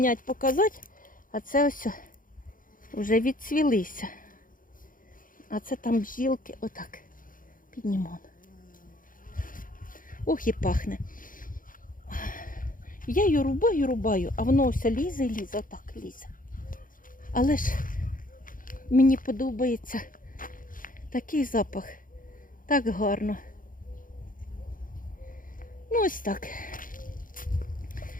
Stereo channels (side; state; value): right; late; 0.40 ms